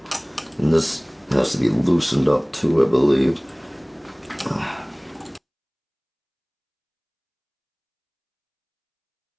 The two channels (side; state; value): both; identical; correlation 1.00